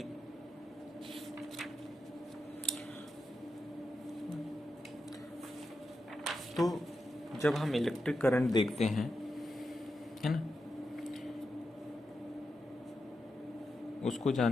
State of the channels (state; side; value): normal; both; correlation 0.88